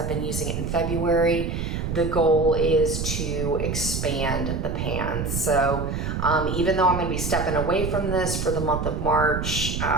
been using it in February, the goal is to expand the pan. So even though I'm going to be stepping away from this for the month of March,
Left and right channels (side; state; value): right; noise; rumble, 3 dB below the sound